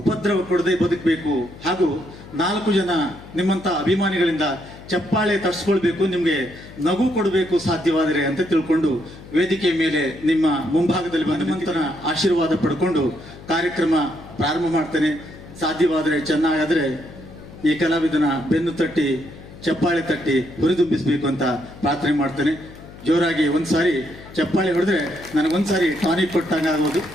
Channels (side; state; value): left; noise; hum, 18 dB below the sound